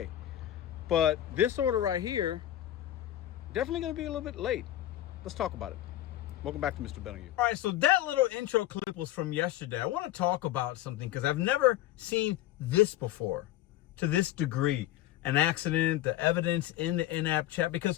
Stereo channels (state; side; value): quieter; right; 13.7 dB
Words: But this order right here, definitely gonna be a little bit late. Let's talk about it. Welcome back to Mr.BetonYou. All right, so that little intro clip was from yesterday. I wanna talk about something because I've never seen this before to this degree. An accident, the evidence in the in-app chat,